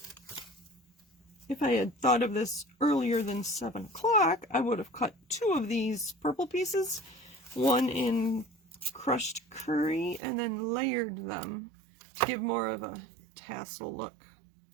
If I had thought of this earlier than 7 o'clock, I would have cut 2 of these purple pieces, one in crushed curry, and then layered them to give more of a tassel look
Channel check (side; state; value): left; drops out; at 10.2 s